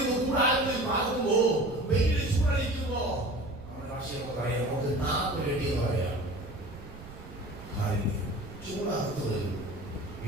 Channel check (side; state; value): right; noise; rumble, 16 dB below the sound